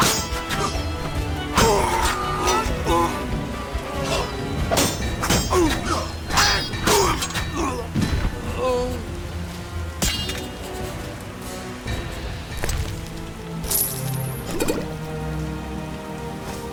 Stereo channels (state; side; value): identical; both; correlation 1.00